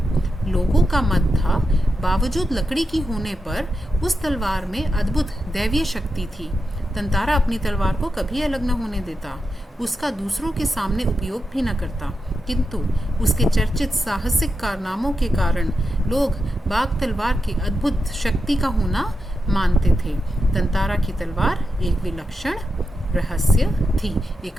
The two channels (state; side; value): normal; both; correlation 0.87